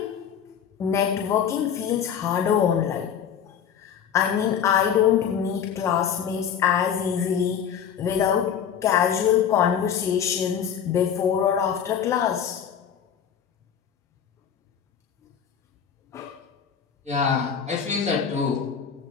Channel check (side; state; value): right; quieter; 8.2 dB